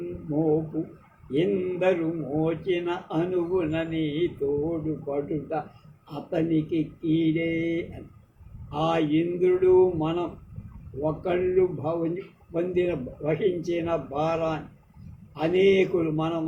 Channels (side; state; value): both; identical; correlation 1.00